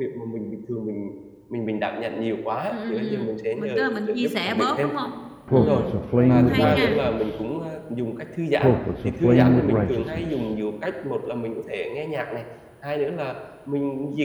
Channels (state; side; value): identical; both; correlation 1.00